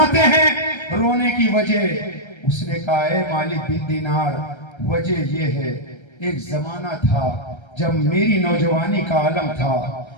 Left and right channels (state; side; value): late; right; 1.3 ms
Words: हैं रोने की वजह। उसने कहा, है मालिक बिन दीनार, वजह ये है, एक जमाना था जब मेरी नौजवानी का आलम था,